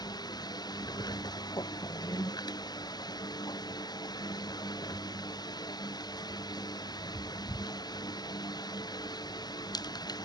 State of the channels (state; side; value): late; right; 0.20 ms